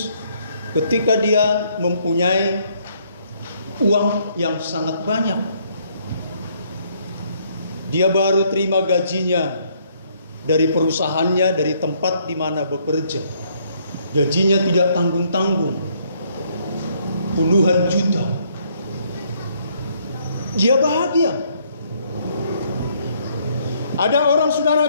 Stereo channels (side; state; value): both; inverted; correlation -0.68